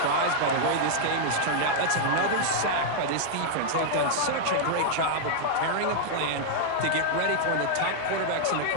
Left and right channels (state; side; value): different; both; correlation -0.01